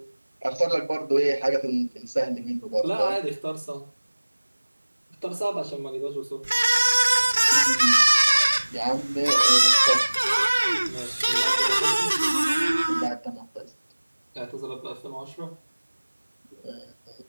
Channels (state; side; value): inverted; both; correlation -1.00